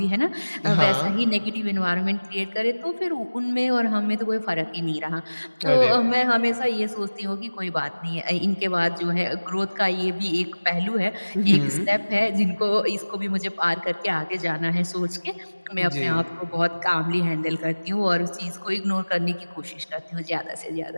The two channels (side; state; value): both; inverted; correlation -1.00